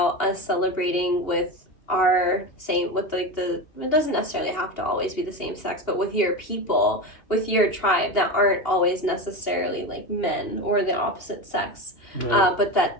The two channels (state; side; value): late; right; 2.8 ms